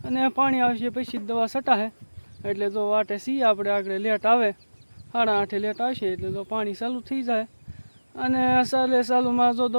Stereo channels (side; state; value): both; inverted; correlation -1.00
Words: અને પાણી આવશે પછી દવા છટાશે. એટલે જો વાટે છીએ આપણે આગળ લેટ આવે 8:30 લેટ આવશે એટલે જો પાણી ચાલુ થઈ જાય અને ચાલુમાં જો